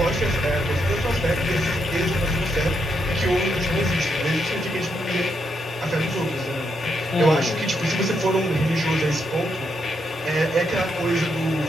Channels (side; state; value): both; normal; correlation 0.79